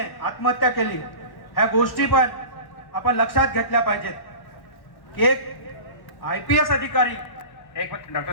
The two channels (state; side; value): late; right; 1.1 ms